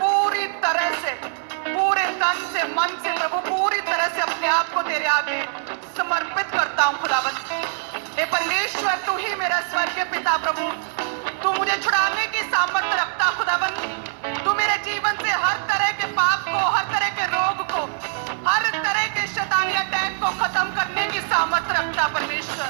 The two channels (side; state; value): left; silent; digital silence